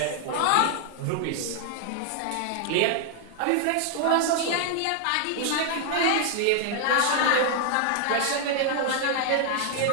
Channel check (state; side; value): different; both; correlation 0.00